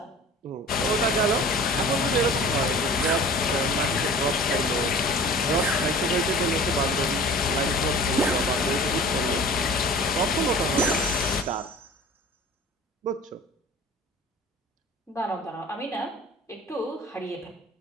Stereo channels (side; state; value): both; normal; correlation 0.43